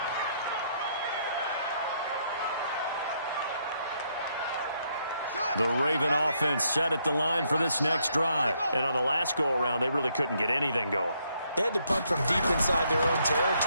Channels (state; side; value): inverted; both; correlation -0.74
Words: The Raven offense set at the line for this next drive. And on the last go-around, they really couldn't get anything going. They had to punt from deep inside their own